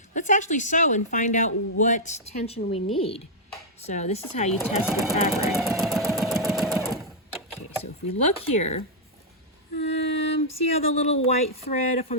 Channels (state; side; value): normal; both; correlation -0.06